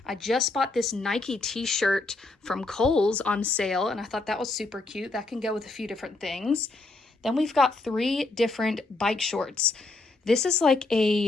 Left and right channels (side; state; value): right; quieter; 3.2 dB